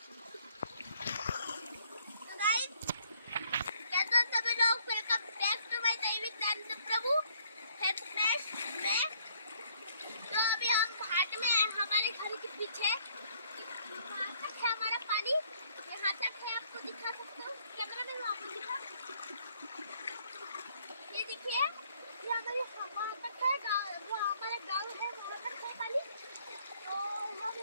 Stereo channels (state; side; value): inverted; both; correlation -0.64